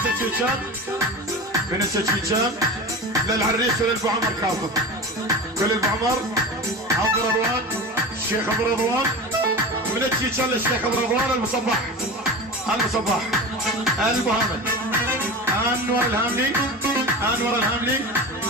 من السجيجان للعريس وللبو عمر كاظم كل البو عمر عبد رضوان الشيخ ابو رضوان من السجيجان للشيخ ابو رضوان المصباح المصباح البو حامد انور الهاملي انور الهاملي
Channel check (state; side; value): normal; both; correlation 0.30